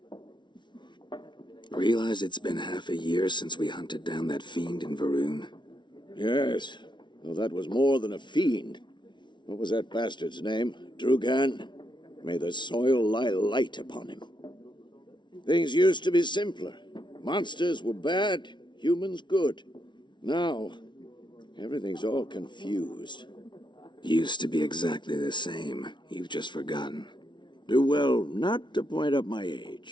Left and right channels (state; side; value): late; right; 0.23 ms